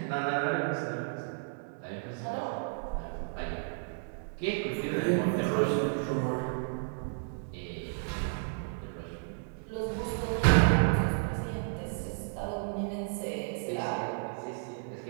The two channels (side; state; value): left; silent; digital silence